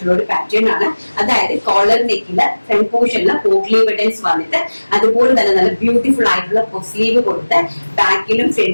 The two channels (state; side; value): inverted; both; correlation -1.00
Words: ഒരു പാറ്റേൺ ആണ്. അതായത് കോളർ നെക്കില് ഫ്രണ്ട് പോർഷനില് പോട്ട്ലീവ് ബട്ടൺസ് വന്നിട്ട് അതുപോലെ തന്നെ നല്ല ബ്യൂട്ടിഫുൾ ആയിട്ടുള്ള സ്ലീവ് കൊടുത്ത് ബാക്കിലും